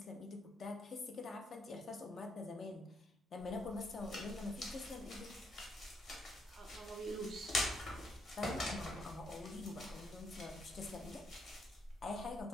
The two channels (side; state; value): both; normal; correlation 0.75